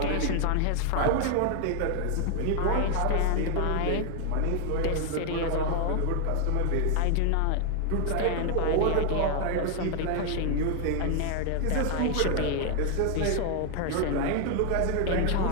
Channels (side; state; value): both; different; correlation 0.00